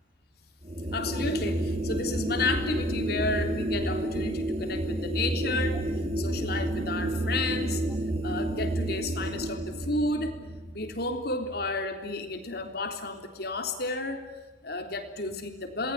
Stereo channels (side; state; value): both; normal; correlation 0.49